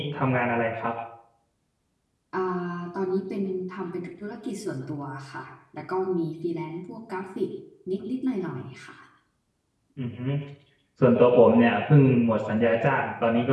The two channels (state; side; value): identical; both; correlation 1.00